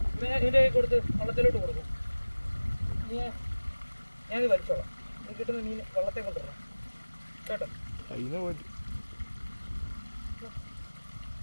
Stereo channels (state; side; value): inverted; both; correlation -1.00